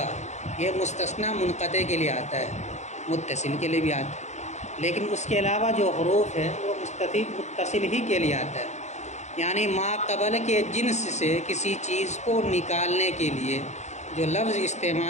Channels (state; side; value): late; right; 0.33 ms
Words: یہ مستثنیٰ منقطع کے لیے آتا ہے، متصل کے لیے بھی آتا ہے، لیکن اس کے علاوہ جو حروف ہے وہ متصل ہی کے لیے آتا ہے. یعنی ما قبل کے جنس سے کسی چیز کو نکالنے کے لیے جو لفظ